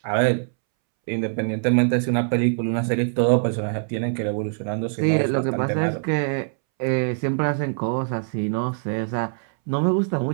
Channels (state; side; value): silent; left; 63 dB below the other